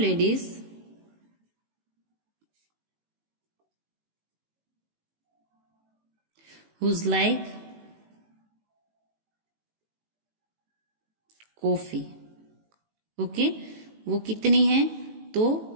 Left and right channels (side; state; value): left; late; 18 ms